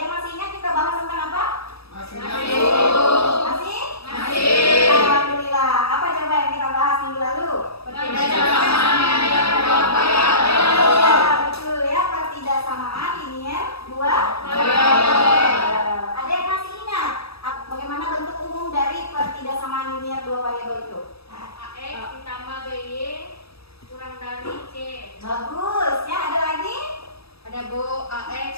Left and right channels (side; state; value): right; late; 0.77 ms